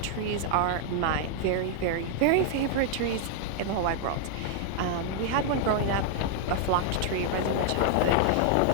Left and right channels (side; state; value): both; different; correlation 0.00